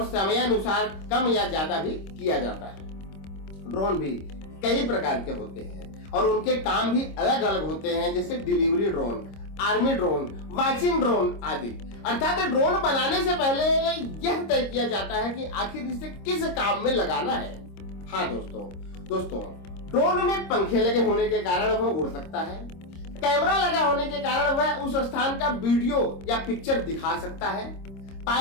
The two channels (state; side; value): late; right; 26 ms